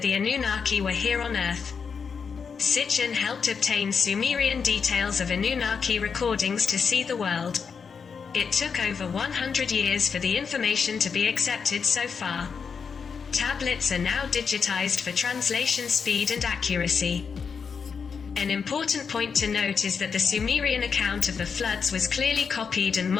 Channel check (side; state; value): right; quieter; 6.0 dB